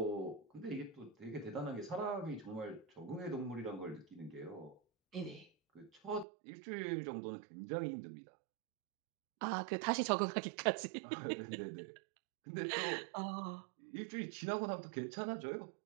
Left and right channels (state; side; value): drops out; left; at 6.2 s